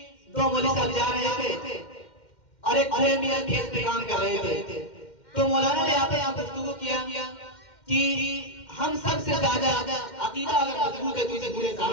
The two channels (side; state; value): right; late; 2.1 ms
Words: دو مولوی صاحب جا رہے تھے اور ایک بڑے میاں کھیت پہ کام کر رہے تھے، تو مولانا نے یہاں پہ گفتگو کیا کہ ہم سب سے زیادہ عقیدہ اگر مضبوط ہے تو اسے برے